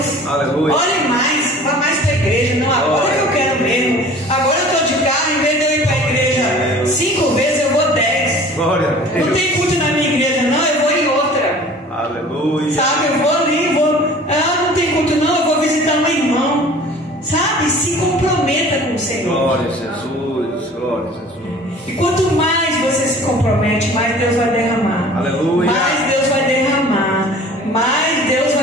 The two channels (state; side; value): normal; both; correlation 0.46